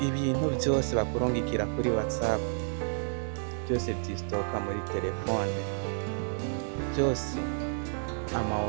byose bakurungikira kuri WhatsApp byose vyistoka muri telefone, byose ama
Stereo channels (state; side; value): silent; left; digital silence